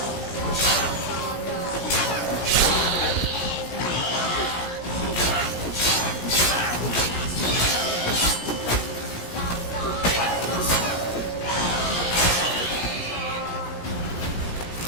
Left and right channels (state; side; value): late; right; 17 ms